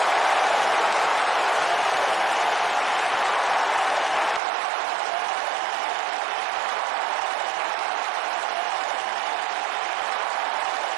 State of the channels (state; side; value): drops out; left; at 4.4 s